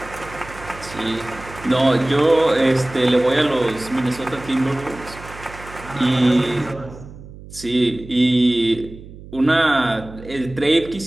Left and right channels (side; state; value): right; noise; hum, 17 dB below the sound